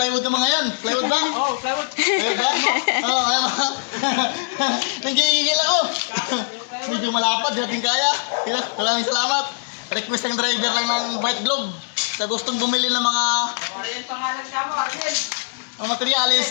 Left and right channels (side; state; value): right; silent; digital silence